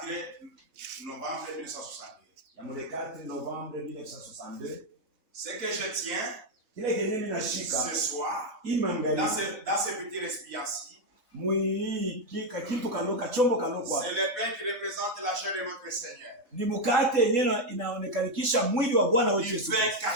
novembre 1962. Ya mwezi 4 novembre 1962. Ce que je tiens ce soir dans ce petit récipient-ci, c'est le pain qui représente la chair de notre Seigneur. Ni mkate yenyewe inaonekanisha mwili wa Bwana wetu Yesu. Pain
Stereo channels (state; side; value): late; left; 3.7 ms